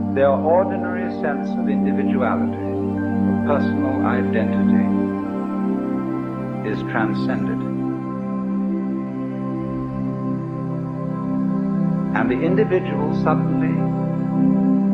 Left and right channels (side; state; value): both; identical; correlation 1.00